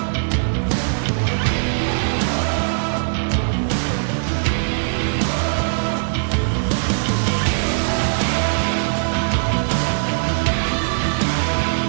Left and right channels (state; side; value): silent; left; digital silence